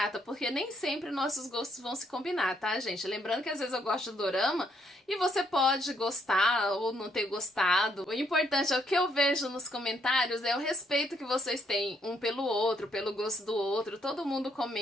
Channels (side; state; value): both; normal; correlation 0.73